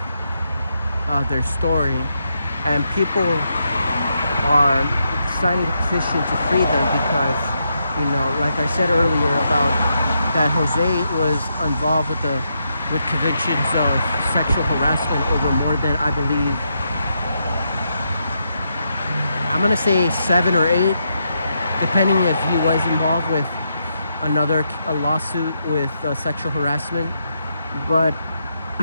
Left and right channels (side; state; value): both; inverted; correlation -0.81